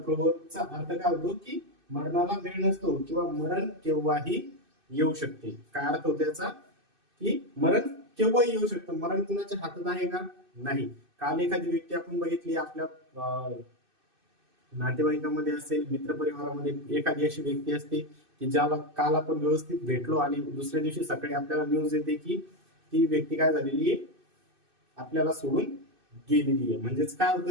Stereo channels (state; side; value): late; left; 2.6 ms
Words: अर्थ काय होतो की मरणाला वेळ नसतो किंवा मरण केव्हाही येऊ शकते. काय अर्थ होतो याचा की मरण केव्हाही येऊ शकतं. मरण कुणाच्या हातात आहे का, नाही. काल एखादी व्यक्ती आपण बघितली आपल्या नातेवाईकांमध्ये असेल, मित्रपरिवारामध्ये एखादी अशी व्यक्ती असते की ज्याला काल आपण व्यवस्थित भेटलो आणि दुसऱ्या दिवशी सकाळी आपल्याला न्यूज येते की ती व्यक्ती काय झालेली आहे, आपल्याला सोडून गेलेली आहे. म्हणजेच काय